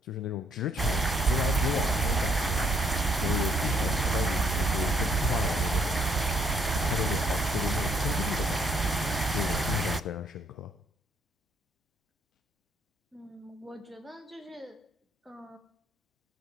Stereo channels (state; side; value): normal; both; correlation 0.69